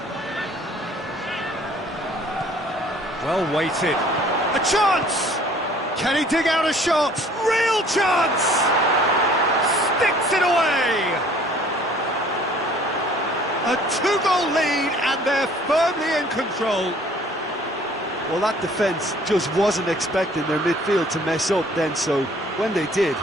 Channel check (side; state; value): both; normal; correlation 0.54